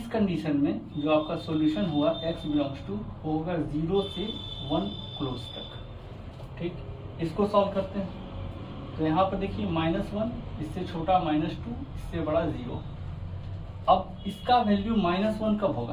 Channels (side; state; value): both; identical; correlation 1.00